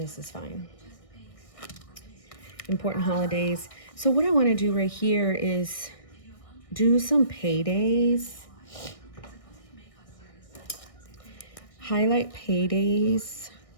is fine. Important holidays. So what I want to do right here is do some paydays. Highlight paydays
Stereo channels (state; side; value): late; right; 1.6 ms